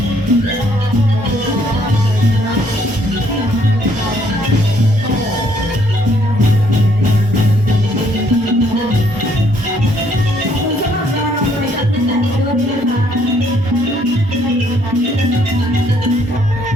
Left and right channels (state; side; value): normal; both; correlation 0.67